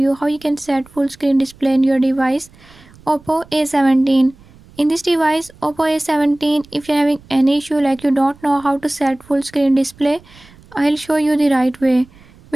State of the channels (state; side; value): noise; right; rumble, 25 dB below the sound